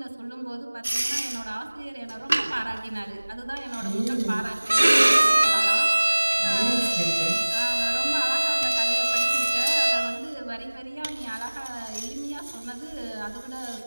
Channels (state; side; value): inverted; both; correlation -1.00